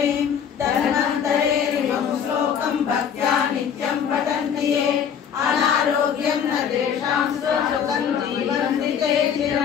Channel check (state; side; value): quieter; right; 7.8 dB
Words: धन्वन्तरेरिमं श्लोकं भक्त्या नित्यं पठन्ति ये अनारोग्यं न तेषां सुखं जीवन्ति ते